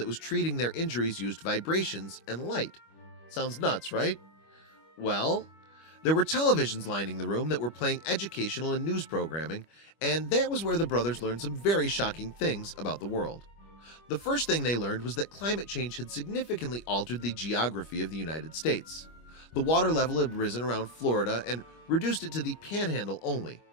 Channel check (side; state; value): right; late; 25 ms